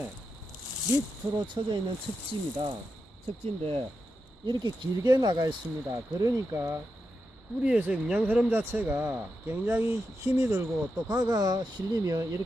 밑으로 쳐져 있는 척지입니다. 척지인데 이렇게 길게 나가 있습니다. 그러니까 뿌리에서 영양 흐름 자체가 굉장히 힘이 들고, 또 가가 실리면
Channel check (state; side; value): normal; both; correlation 0.87